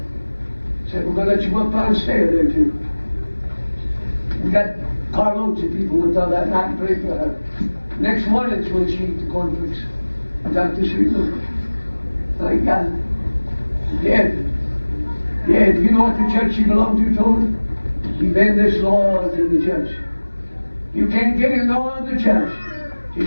Said, we're going to let you go up and stay there too. We got carloads of people went down that night and prayed for her. Next morning is when she ate the cornflakes. Got to sleep with her. Thank God. Dead. Dead. You know what the church she belonged to told her? You've been this laws in the church. You can't get in no other church till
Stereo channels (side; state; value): both; inverted; correlation -1.00